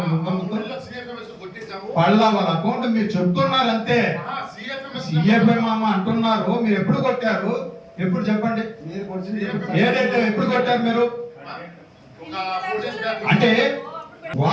వాళ్ళ అకౌంట్ మీరు చెప్తున్నారు అంతే. సిఎఫ్ఎం అంటున్నారు. మీరు ఎప్పుడు కొట్టారు? ఎప్పుడు చెప్పండి. మీరు కొంచెం ఏదైతే ఎప్పుడు కొట్టారు మీరు? అంటే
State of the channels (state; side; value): identical; both; correlation 1.00